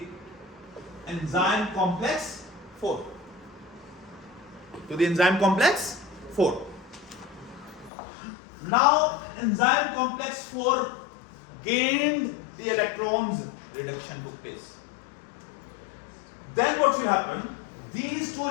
enzyme complex 4. To the enzyme complex 4. Now enzyme complex 4 gained the electrons, reduction took place. Then what will happen? These 2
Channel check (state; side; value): drops out; right; at 7.9 s